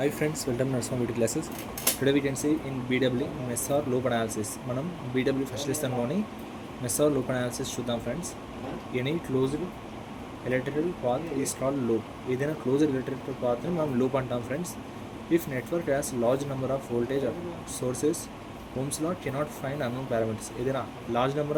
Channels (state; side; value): identical; both; correlation 1.00